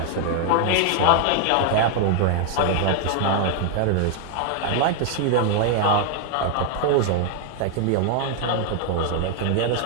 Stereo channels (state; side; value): different; both; correlation 0.00